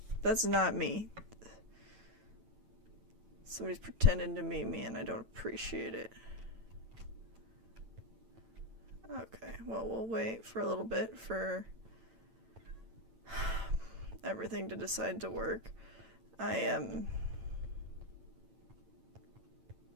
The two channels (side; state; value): left; late; 8.9 ms